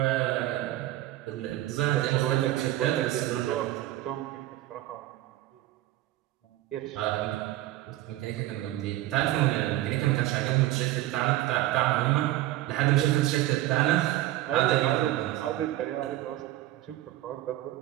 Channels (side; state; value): left; quieter; 15.4 dB